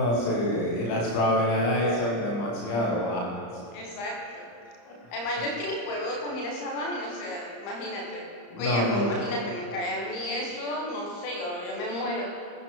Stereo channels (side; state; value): right; late; 34 ms